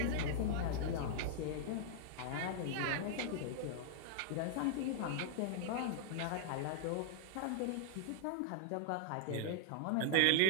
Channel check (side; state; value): both; different; correlation -0.01